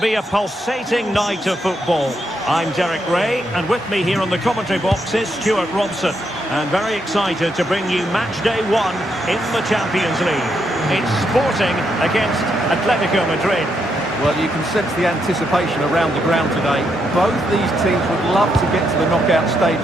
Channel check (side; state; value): both; normal; correlation 0.79